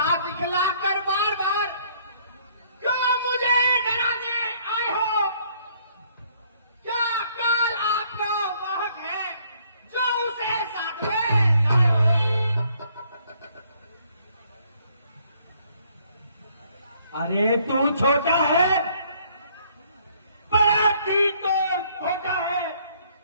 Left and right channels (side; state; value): both; inverted; correlation -0.64